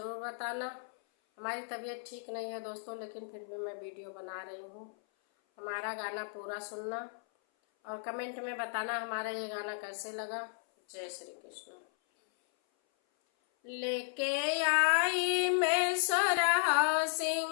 बताना। हमारी तबीयत ठीक नहीं है दोस्तों, लेकिन फिर भी मैं वीडियो बना रही हूँ। हमारा गाना पूरा सुनना और कमेंट में बताना हमारा ये गाना कैसे लगा। जय श्री कृष्ण। लेके आई मैं सोरहा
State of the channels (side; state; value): right; silent; 55 dB below the other